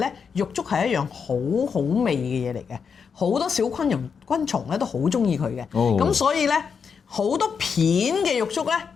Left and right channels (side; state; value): right; quieter; 6.2 dB